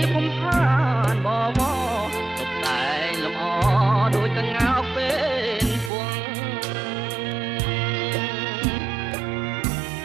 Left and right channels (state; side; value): drops out; left; at 5.9 s